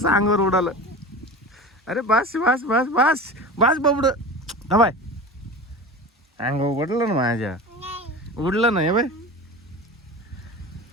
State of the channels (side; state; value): both; normal; correlation 0.32